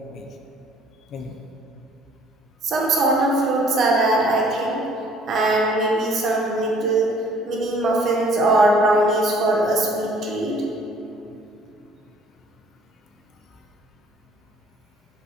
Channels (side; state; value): both; normal; correlation 0.57